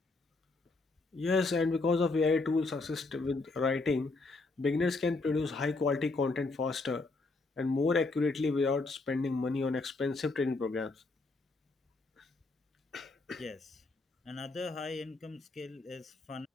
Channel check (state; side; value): quieter; right; 3.5 dB